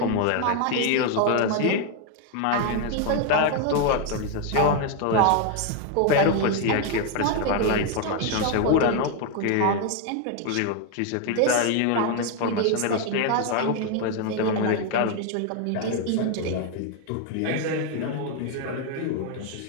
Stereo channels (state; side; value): different; both; correlation 0.01